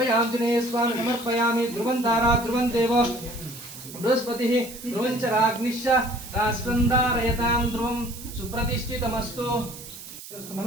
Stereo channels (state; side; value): noise; right; hiss, 14 dB below the sound